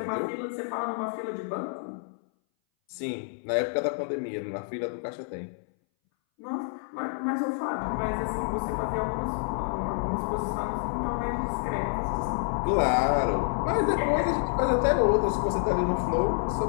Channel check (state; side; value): silent; right; 59 dB below the other